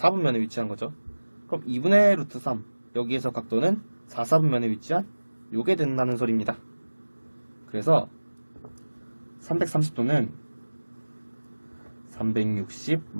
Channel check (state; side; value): inverted; both; correlation -1.00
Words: 위치한 거죠. 그럼 2분의 루트 3 여기에서 각도는 4분면에 위치한 요게 된다는 소리입니다. 그래서 330도는 360